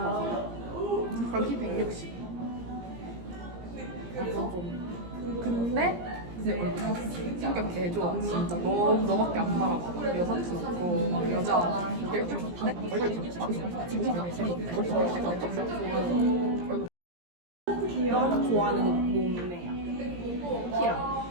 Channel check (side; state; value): left; late; 17 ms